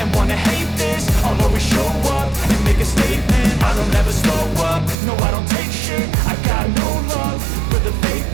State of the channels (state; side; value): drops out; left; at 5.0 s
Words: wanna hate this, I'll always show up and make a statement. I don't ever slow up, no I don't take shit. I got no love for the